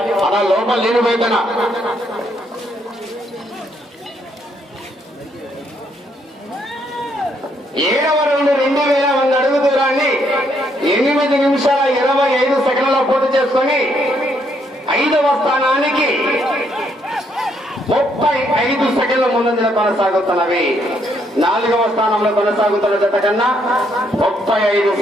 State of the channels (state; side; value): normal; both; correlation 0.72